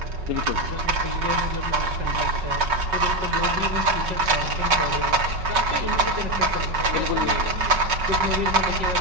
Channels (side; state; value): left; late; 5.4 ms